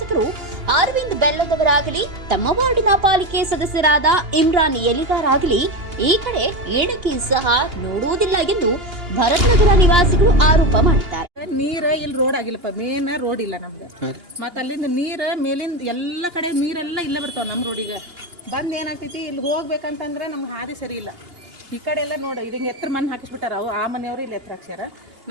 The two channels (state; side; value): late; left; 2.8 ms